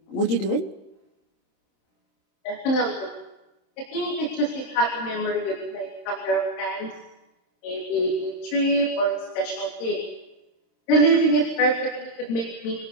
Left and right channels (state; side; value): late; right; 26 ms